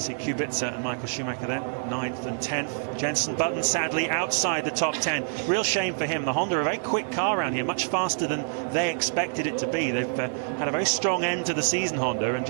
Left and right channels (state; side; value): silent; left; digital silence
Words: Kubica and Michael Schumacher there, 9th and 10th. Jenson Button sadly outside the top 10. Real shame for him. The Honda, a very quick car around here, much faster than they expected it to be. They've had a very strong end to the season, Honda, and